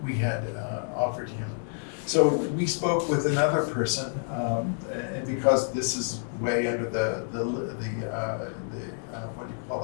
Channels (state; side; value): silent; right; 59 dB below the other